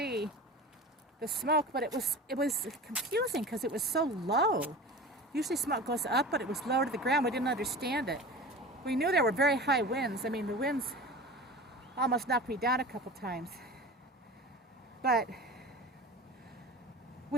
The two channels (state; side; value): normal; both; correlation 0.34